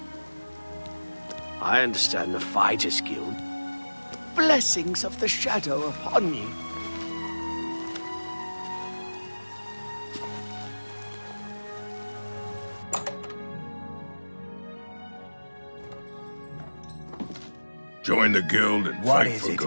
I understand the Fighters Guild. Blessings of the Shadow upon you. Join the guild and What fight is for it?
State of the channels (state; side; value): inverted; both; correlation -1.00